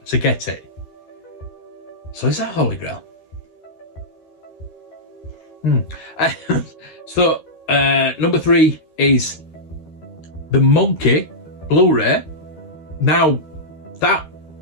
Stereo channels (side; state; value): right; late; 13 ms